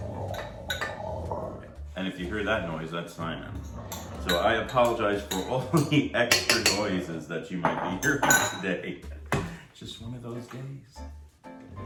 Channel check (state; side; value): identical; both; correlation 1.00